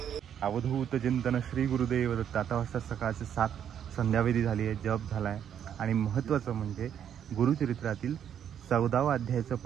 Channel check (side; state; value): left; quieter; 9.1 dB